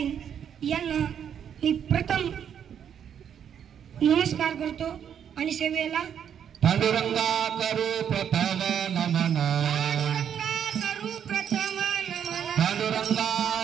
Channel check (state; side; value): quieter; left; 8.6 dB